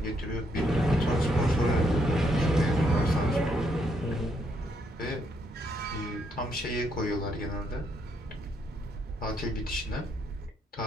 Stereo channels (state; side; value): normal; both; correlation 0.74